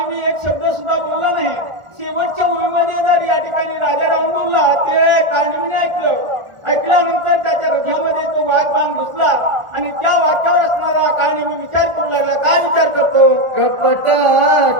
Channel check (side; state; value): left; late; 1.4 ms